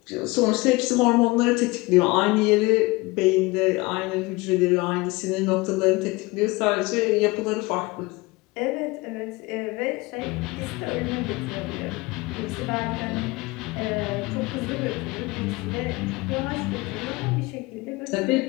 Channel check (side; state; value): right; quieter; 23.3 dB